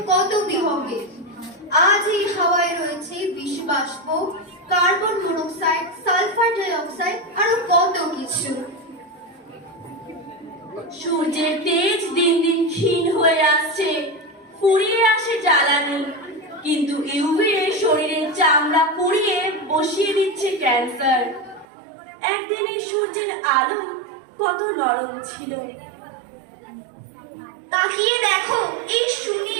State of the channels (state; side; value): drops out; left; at 21.7 s